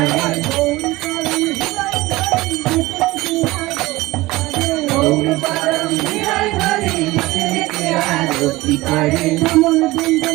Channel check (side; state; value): left; quieter; 19.6 dB